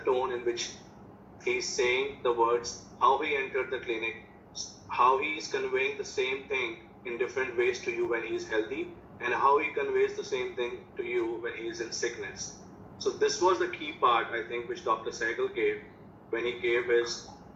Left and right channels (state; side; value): identical; both; correlation 1.00